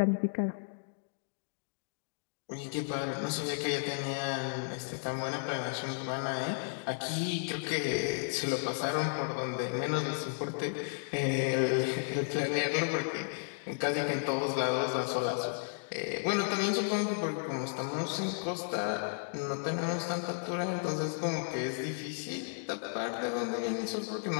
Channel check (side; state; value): right; silent; digital silence